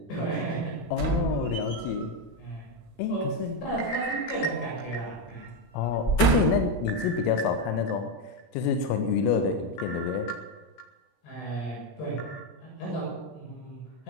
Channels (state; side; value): late; right; 17 ms